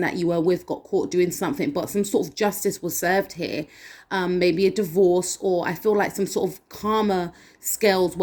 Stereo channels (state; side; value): identical; both; correlation 1.00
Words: that you were with got caught doing something, but some sort of justice was served here. Maybe a divorce, or I feel like some sort of karma scales